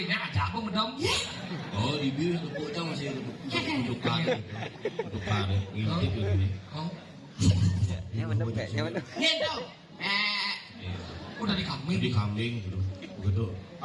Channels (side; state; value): both; identical; correlation 1.00